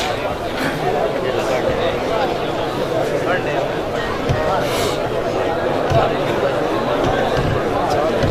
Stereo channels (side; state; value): both; identical; correlation 1.00